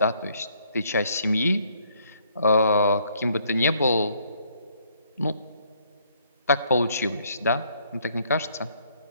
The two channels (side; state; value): both; inverted; correlation -0.67